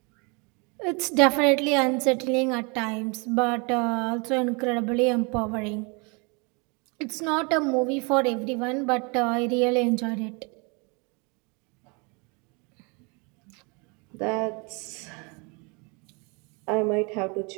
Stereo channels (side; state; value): left; quieter; 31.3 dB